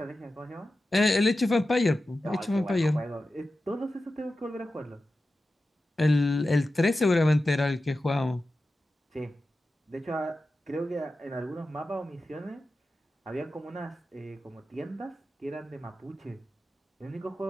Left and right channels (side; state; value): both; normal; correlation 0.93